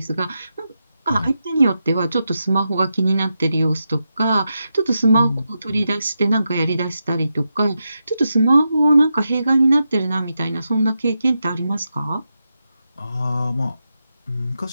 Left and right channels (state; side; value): inverted; both; correlation -0.87